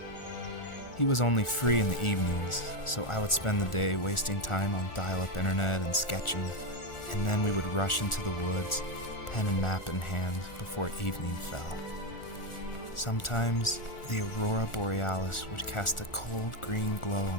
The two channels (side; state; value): right; late; 1.4 ms